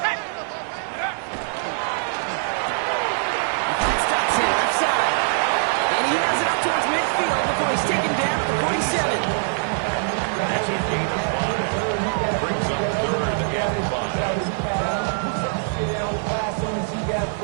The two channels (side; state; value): left; silent; 63 dB below the other